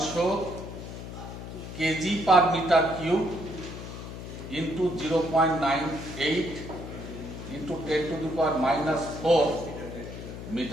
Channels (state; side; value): noise; left; hum, 10 dB below the sound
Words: KG per metre cube into 0.98 into 10 to the power -4